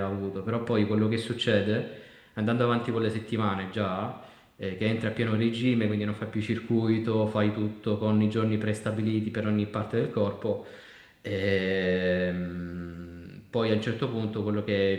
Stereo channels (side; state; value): both; identical; correlation 1.00